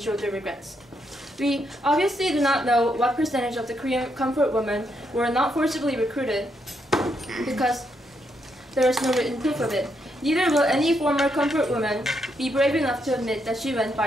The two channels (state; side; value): normal; both; correlation 0.78